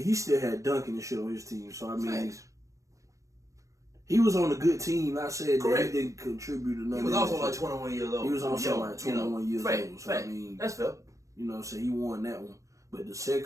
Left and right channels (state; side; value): late; left; 0.15 ms